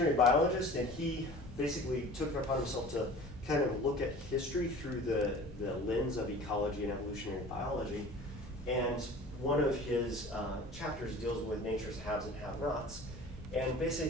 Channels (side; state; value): left; noise; rumble, 16 dB below the sound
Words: biologist, and he basically took it upon himself to kind of look at history through the lens of ecology and evolutionary biology. And one of his chapters deals with nature's haves and have-nots. And